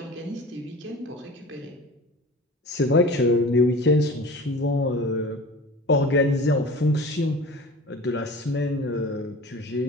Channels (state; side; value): normal; both; correlation 0.38